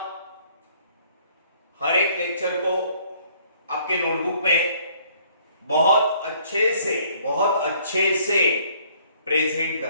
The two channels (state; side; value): inverted; both; correlation -0.61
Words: हर एक लेक्चर को आपके नोटबुक में बहुत अच्छे से प्रेजेंट